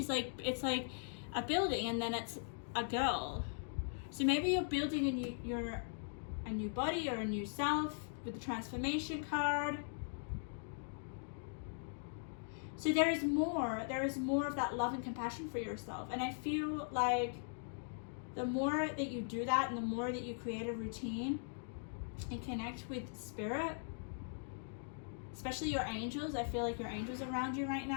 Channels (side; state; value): right; silent; digital silence